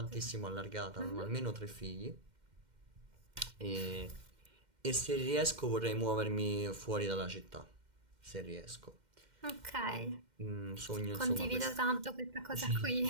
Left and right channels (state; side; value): late; left; 2.1 ms